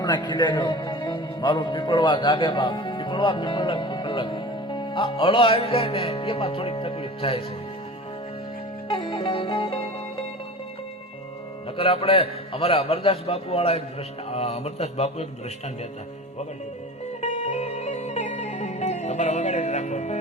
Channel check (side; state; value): both; normal; correlation 0.35